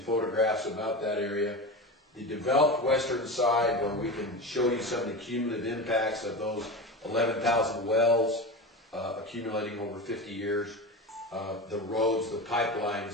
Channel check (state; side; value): normal; both; correlation 0.25